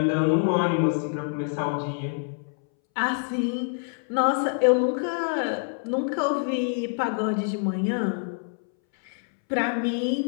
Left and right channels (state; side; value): silent; right; 61 dB below the other